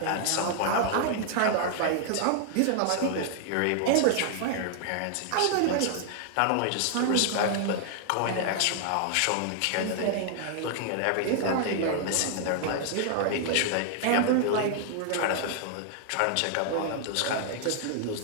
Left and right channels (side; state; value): both; different; correlation 0.00